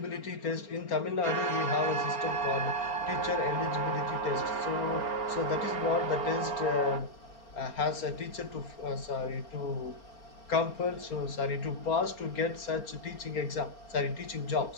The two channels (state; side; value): late; right; 4.4 ms